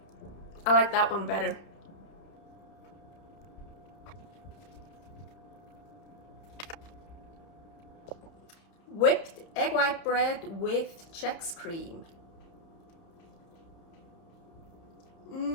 I like that one better. Whipped egg white bread with Chex cream.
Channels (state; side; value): late; right; 31 ms